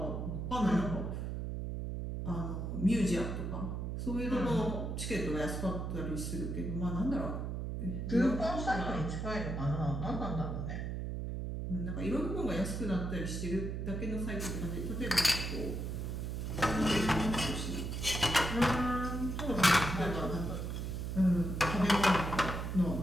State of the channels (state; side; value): noise; right; hum, 3 dB below the sound